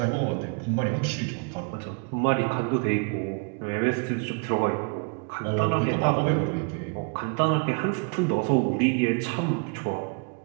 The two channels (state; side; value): quieter; left; 37.2 dB